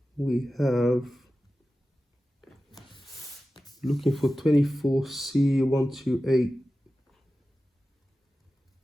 we have looking for 24C128,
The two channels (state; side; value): normal; both; correlation 0.94